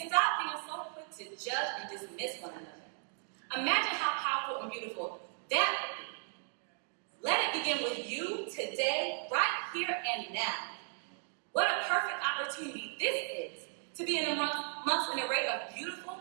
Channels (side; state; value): left; silent; 54 dB below the other